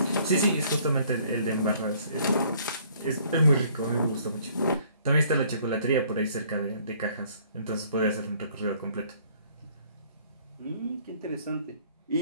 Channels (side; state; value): both; inverted; correlation -0.60